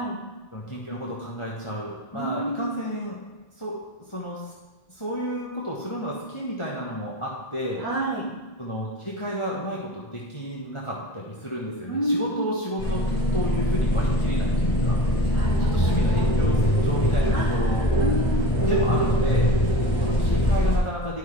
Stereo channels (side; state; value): right; late; 1.4 ms